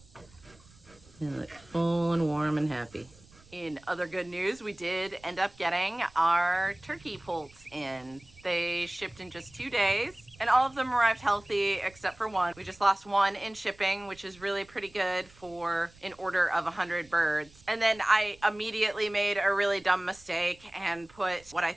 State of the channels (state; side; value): noise; right; rumble, 26 dB below the sound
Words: They look full and warm and happy. In other good news, we did end up getting our turkey poults in. They shipped in just 2 days, and all of them arrived healthy except for one. We just lost one in shipping, which is really pretty good for an order of 100 birds. And then I immediately made a really dumb mistake and put what I